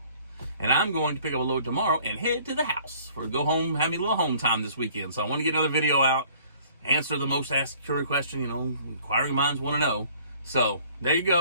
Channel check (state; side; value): inverted; both; correlation -0.56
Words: And I'm going to pick up a load tomorrow and head to the house for go home, have me a little home time this weekend. So I want to get another video out, answer the most asked question, inquiring minds want to know. So there you